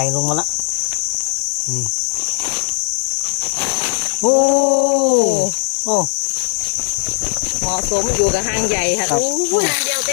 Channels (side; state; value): right; silent; digital silence